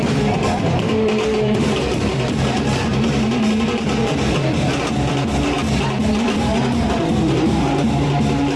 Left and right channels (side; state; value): both; identical; correlation 1.00